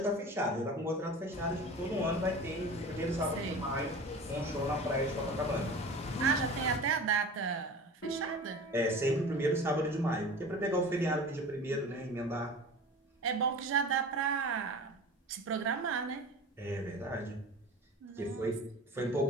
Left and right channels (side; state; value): both; normal; correlation 0.36